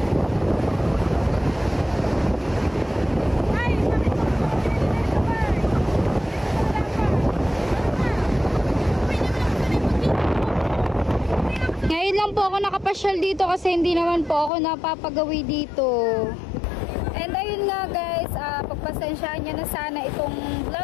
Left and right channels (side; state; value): right; drops out; at 14.5 s